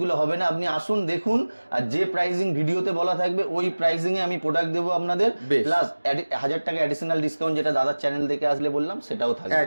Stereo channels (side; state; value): both; inverted; correlation -1.00